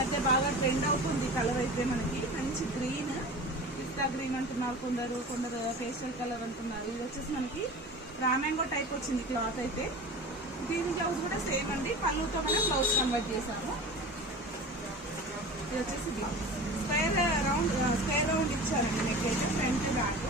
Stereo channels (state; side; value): normal; both; correlation 0.35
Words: మధ్య బాగా ట్రెండ్ అవుతుంది కలర్ అయితే. మనకి మంచి గ్రీన్, పిస్తా గ్రీన్ అంటున్నారు కొందరు, పేస్టల్ కలర్ అంటున్నారు. ఇది వచ్చేసి మనకి రామ్యాంగో టైప్ వచ్చింది క్లాత్ అయితే. దీని బ్లౌజ్ కూడా సేమ్ అండి, పళ్ళుతో మనం బ్లౌజ్ కన్వర్ట్ చేసాము. ఇది వచ్చేసి బ్లౌజ్ స్క్వేర్ రౌండ్ ఇచ్చారండి. నెక్ అయితే ఫ్రంట్ బ్యాక్,